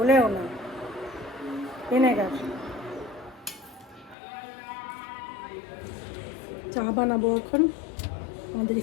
না ভিনেগার চা বানাবো এখন আমাদের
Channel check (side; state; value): right; drops out; at 4.2 s